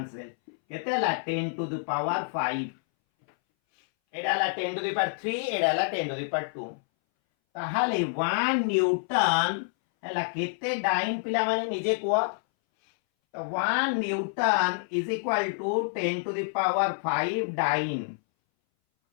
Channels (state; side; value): silent; right; 60 dB below the other